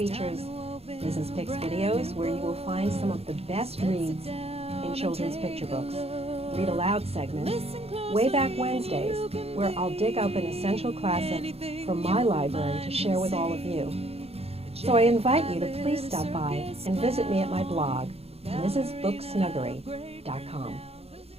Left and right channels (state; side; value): late; left; 0.29 ms